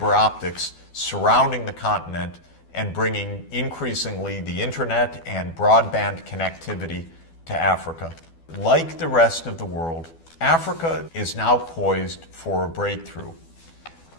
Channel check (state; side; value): late; right; 12 ms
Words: optics surrounding the continent and bringing increasingly the internet and broadband connectivity to Africa. Like the rest of the world, Africa is now poised for a breakthrough